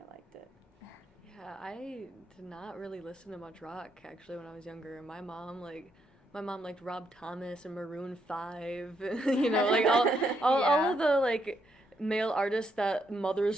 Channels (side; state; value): both; normal; correlation 0.77